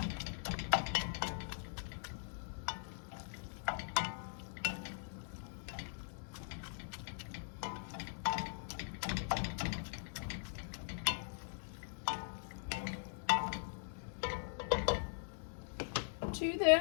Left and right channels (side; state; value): right; silent; digital silence